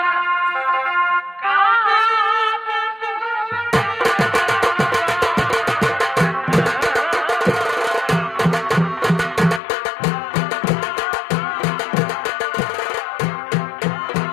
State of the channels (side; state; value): right; drops out; at 9.6 s